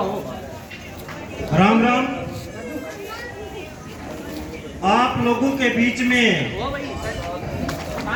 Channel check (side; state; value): both; identical; correlation 1.00